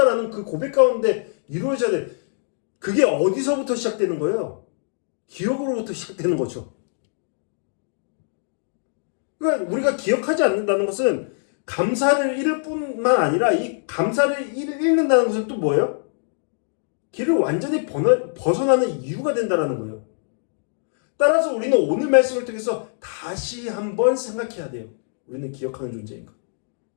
그 고백 가운데 이루어져야 돼. 그게 어디서부터 시작되는 거예요? 기억으로부터 시작되는 거죠. 그러니까 우리가 기억하지 않는다는 것은 감사를 잃을 뿐만 아니라 이 감사를 잃는다는 것은 또 뭐예요? 길을 완전히 벗어나는 이유가 된다는 거예요. 따라서 우리는 오늘 말씀을 통해서 다시 한번 생각해야 돼요. 우리는 기억하는 존재인가?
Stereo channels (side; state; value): right; silent; digital silence